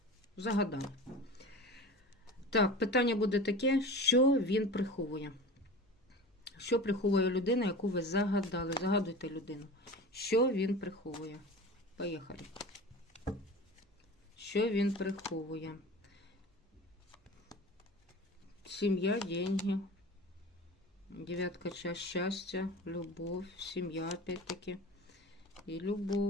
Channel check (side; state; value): both; normal; correlation 0.35